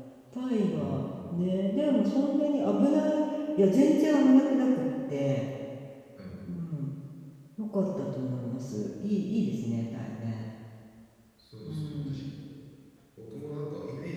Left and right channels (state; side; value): identical; both; correlation 1.00